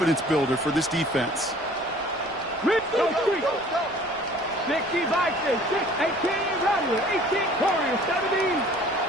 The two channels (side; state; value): both; normal; correlation 0.51